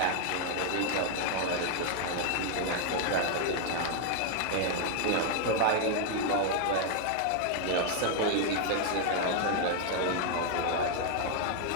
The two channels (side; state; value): both; different; correlation 0.00